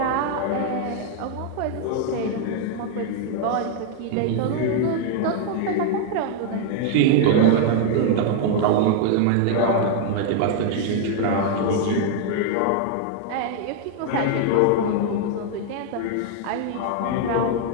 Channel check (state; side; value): different; both; correlation 0.00